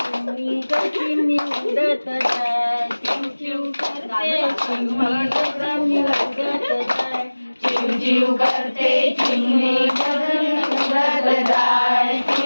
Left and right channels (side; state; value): both; inverted; correlation -1.00